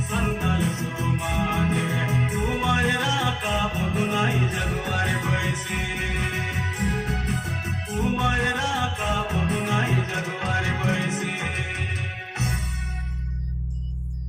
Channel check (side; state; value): both; identical; correlation 1.00